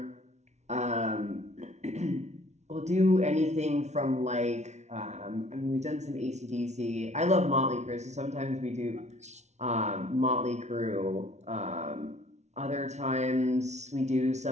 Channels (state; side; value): late; left; 0.32 ms